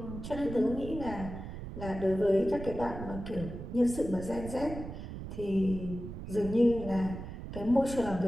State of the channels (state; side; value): noise; right; rumble, 9 dB below the sound